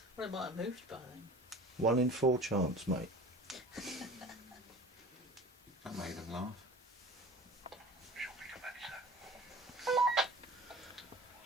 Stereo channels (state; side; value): normal; both; correlation 0.39